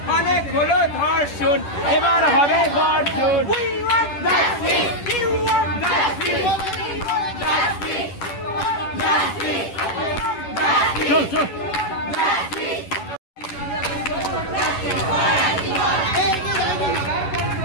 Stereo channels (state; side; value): late; right; 10 ms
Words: অনেক হলো ধর্ষণ, এবার হবে গর্জন। We want justice, we want justice, justice, justice, চল চল।